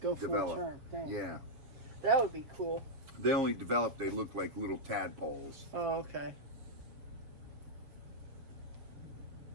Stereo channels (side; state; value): left; late; 6.7 ms